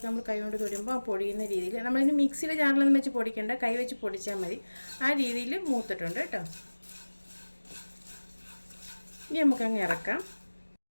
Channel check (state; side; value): inverted; both; correlation -1.00